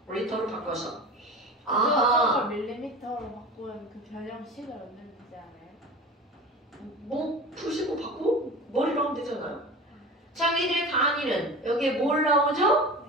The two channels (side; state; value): both; normal; correlation 0.34